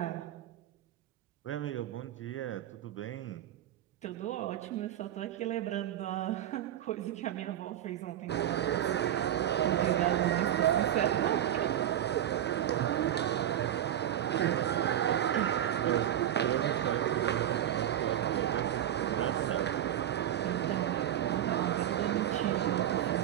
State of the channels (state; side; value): quieter; left; 11.2 dB